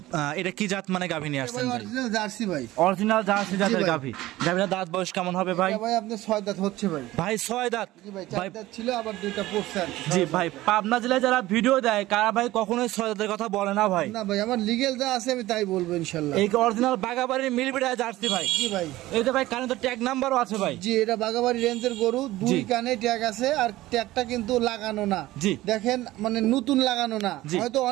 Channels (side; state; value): left; quieter; 16.9 dB